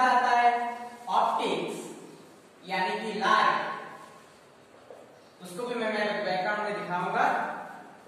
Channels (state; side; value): identical; both; correlation 1.00